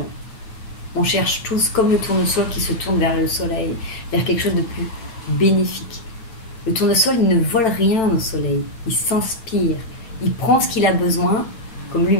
On cherche tous, comme le tournesol qui se tourne vers le soleil, vers quelque chose de plus bénéfique. Le tournesol, il ne vole rien au soleil. Il s'inspire. Il prend ce qu'il a besoin, comme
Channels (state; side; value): late; right; 9.0 ms